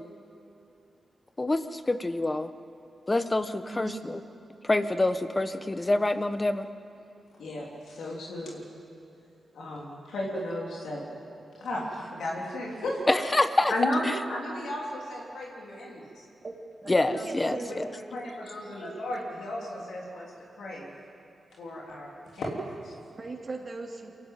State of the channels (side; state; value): both; normal; correlation 0.95